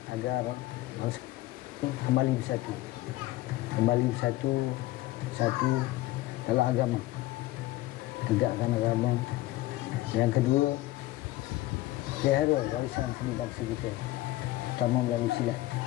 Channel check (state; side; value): quieter; right; 17.0 dB